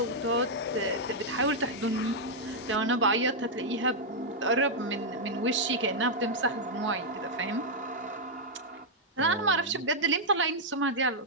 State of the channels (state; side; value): normal; both; correlation -0.04